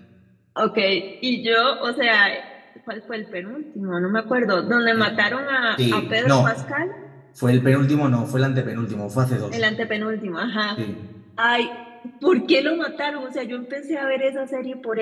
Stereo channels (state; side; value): identical; both; correlation 1.00